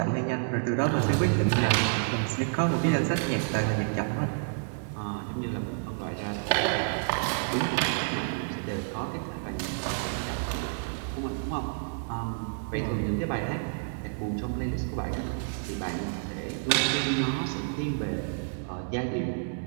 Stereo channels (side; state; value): left; silent; 58 dB below the other